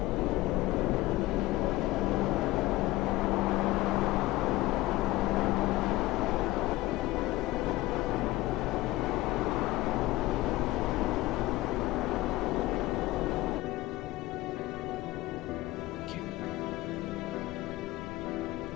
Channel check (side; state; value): right; quieter; 17.9 dB